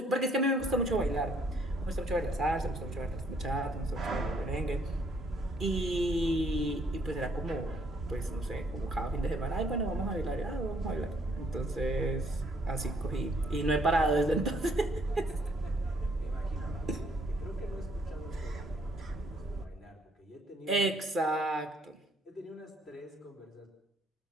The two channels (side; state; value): both; normal; correlation 0.67